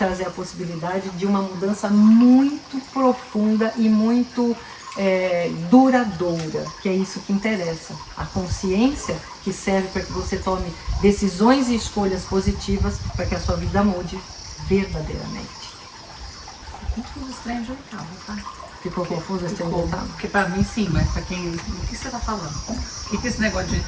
a possibilidade de uma mudança muito profunda e muito duradoura, que é isso que interessa. A consciência que serve para que você tome decisões e escolhas positivas para que a sua vida mude verdadeiramente. Confuso esse trem de oitava, tá? Ficou confuso esse trem de oitava? Porque para mim sim, mas para quem... O que você tá falando? O que é esse negócio de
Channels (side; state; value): both; identical; correlation 1.00